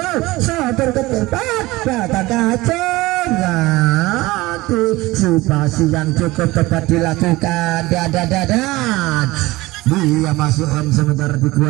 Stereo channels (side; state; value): left; quieter; 19.8 dB